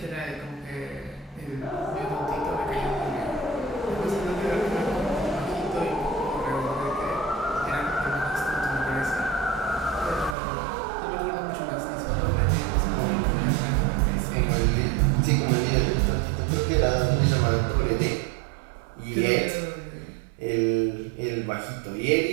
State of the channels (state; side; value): drops out; left; at 10.4 s